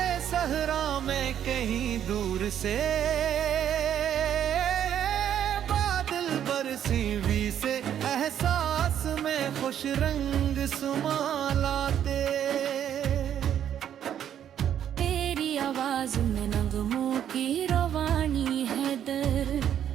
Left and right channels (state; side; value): quieter; left; 9.9 dB